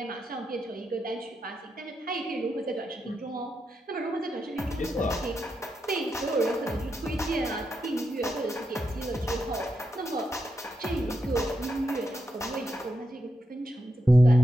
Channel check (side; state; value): both; normal; correlation 0.85